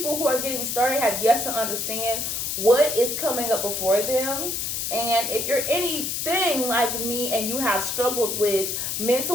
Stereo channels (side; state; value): left; noise; hiss, 2 dB below the sound